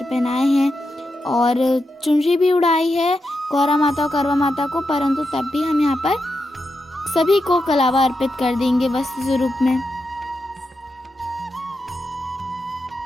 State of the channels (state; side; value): normal; both; correlation 0.87